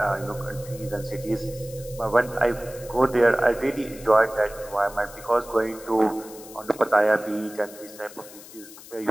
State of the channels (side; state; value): left; noise; hiss, 18 dB below the sound